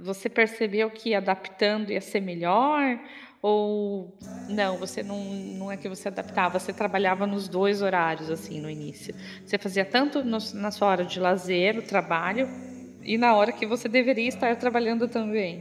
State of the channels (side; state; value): both; identical; correlation 1.00